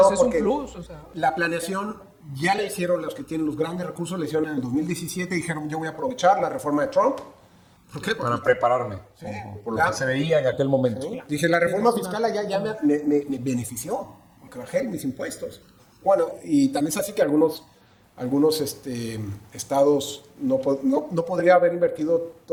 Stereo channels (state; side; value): identical; both; correlation 1.00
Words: es un plus, o sea. La planeación ya la hicieron los que tienen los grandes recursos, la hicieron en el 2017, dijeron yo voy a aprovechar la reforma de Trump. ¿Por qué? Para prepararme, sí, por lo que se veía en aquel momento. Sí. Dije, la reforma fiscal ya me benefició, porque bajé mis impuestos. Bueno, y también es así que algunos estados no podría haber invertido